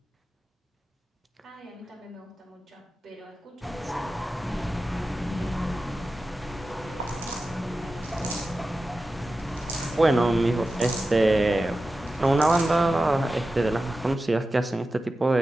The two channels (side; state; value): both; normal; correlation 0.93